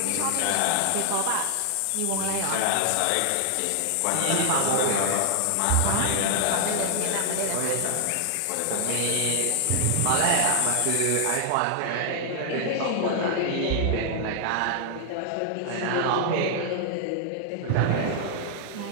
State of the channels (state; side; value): different; both; correlation 0.00